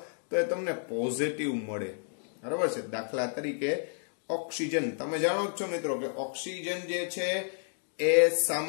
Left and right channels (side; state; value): right; silent; 57 dB below the other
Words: તો એ તમને પોઝિટિવ મળે, બરાબર છે. દાખલા તરીકે ઓક્સિજન, તમે જાણો જ છો મિત્રો કે ઓક્સિજન જે છે એ